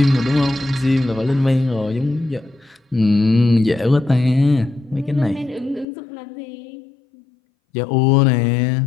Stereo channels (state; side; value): drops out; right; at 5.9 s